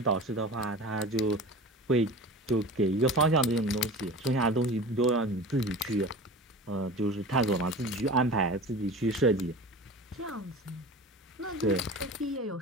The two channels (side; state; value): both; normal; correlation 0.35